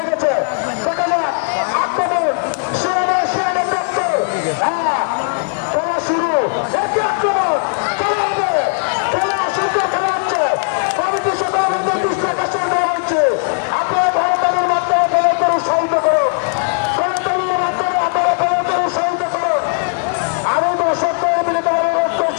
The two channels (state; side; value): silent; right; 57 dB below the other